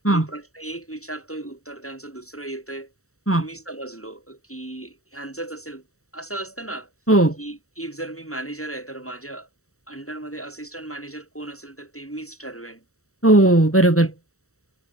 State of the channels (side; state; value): right; late; 0.64 ms